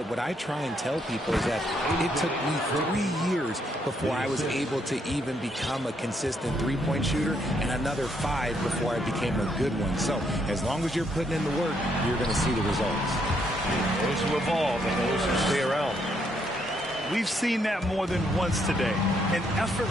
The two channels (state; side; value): normal; both; correlation 0.73